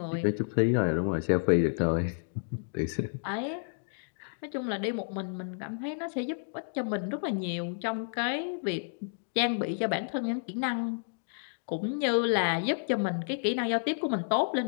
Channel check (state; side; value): silent; right; digital silence